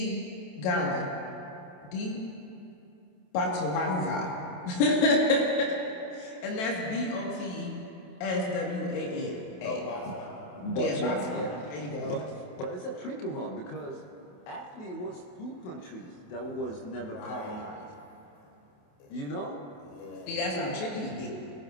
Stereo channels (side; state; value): right; late; 28 ms